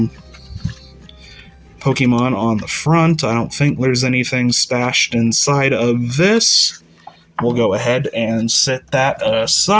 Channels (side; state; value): both; identical; correlation 1.00